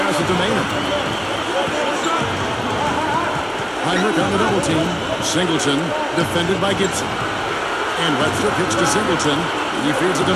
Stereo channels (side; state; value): both; identical; correlation 1.00